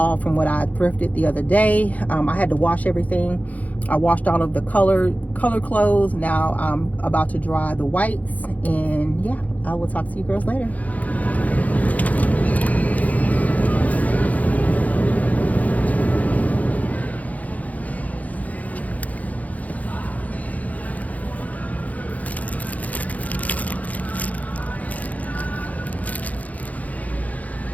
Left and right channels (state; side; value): late; right; 0.074 ms